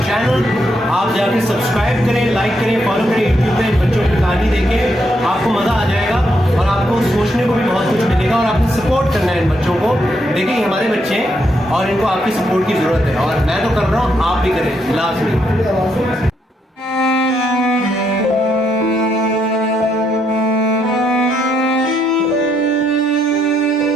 channel. आप जाके सब्सक्राइब करें, लाइक करें, फॉलो करें यूट्यूब पे। बच्चों की कहानी देखें, आपको मज़ा आ जाएगा और आपको सोचने को भी बहुत कुछ मिलेगा। और आपको सपोर्ट करना है इन बच्चों को। देखिए ये हमारे बच्चे हैं और इनको आपकी सपोर्ट की ज़रूरत है और मैं तो कर रहा हूँ, आप भी करें लाजमी।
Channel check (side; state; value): both; normal; correlation 0.77